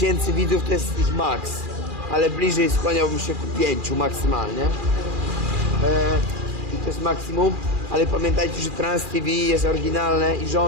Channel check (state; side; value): late; left; 2.4 ms